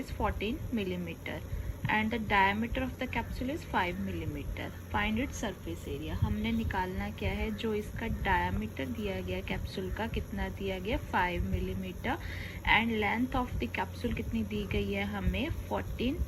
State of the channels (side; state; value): both; identical; correlation 1.00